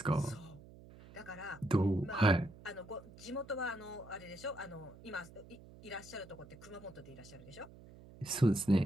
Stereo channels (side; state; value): right; noise; hum, 19 dB below the sound